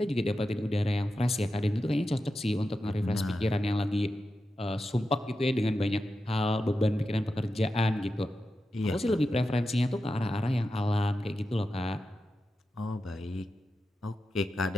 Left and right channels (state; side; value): normal; both; correlation 0.90